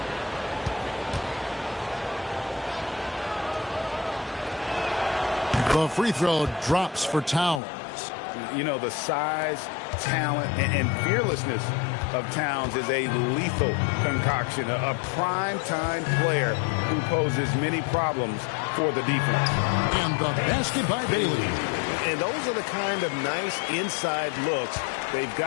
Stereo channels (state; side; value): drops out; right; at 7.6 s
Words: The free throw drops for Towns. You know, the size, talent, and fearlessness of Towns is a lethal concoction, a prime-time player who poses many problems for the defense. And the basket by Bailey. And those are the kind of nice inside looks they've